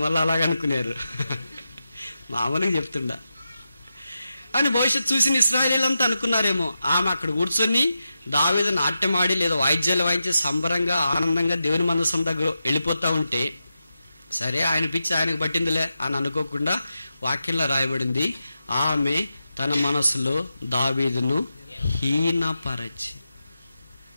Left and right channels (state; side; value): inverted; both; correlation -0.89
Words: మళ్ళీ అలాగనుకున్నారు. మామూలుగా చెప్తుండా అని భవిష్యత్తు చూసిన ఇశ్రాయేలీలంతా అనుకున్నారేమో, ఆమె అక్కడ కూర్చొని దావీదు నాట్యమాడి లేదా వాయిద్యాలు వాయించి సంబరంగా ఆనందంగా దేవుని మందసం దగ్గర వెళ్ళిపోతా ఉంటే, సరే ఆయన పిచ్చి ఆయనకు పట్టిందిలే అని అనుకోకుండా వాక్యంలో రాయబడింది, ఆమె తన మనసులో దావీదును హీనపరచి.